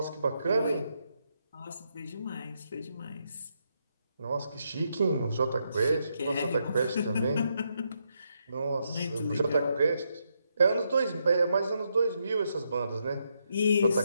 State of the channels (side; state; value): both; inverted; correlation -0.80